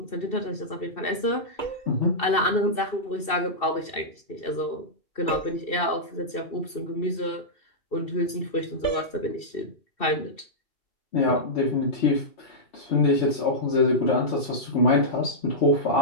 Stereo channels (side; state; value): right; late; 2.7 ms